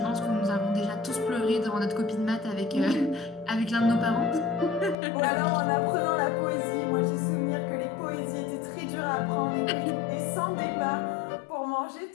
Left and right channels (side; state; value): right; drops out; at 5.0 s